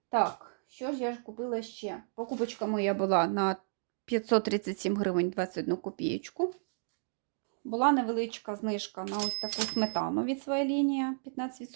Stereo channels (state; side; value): silent; left; digital silence